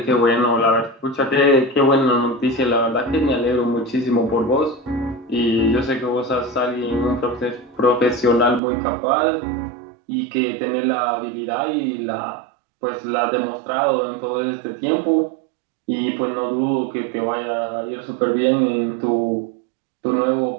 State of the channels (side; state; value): left; drops out; at 8.6 s